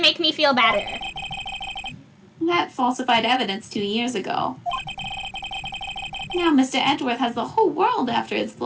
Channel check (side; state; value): both; identical; correlation 1.00